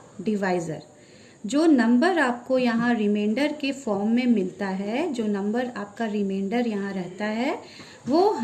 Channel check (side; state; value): both; identical; correlation 1.00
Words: divisor. जो number आपको यहाँ reminder के form में मिलता है, जो number आपका reminder यहाँ रहता है, वो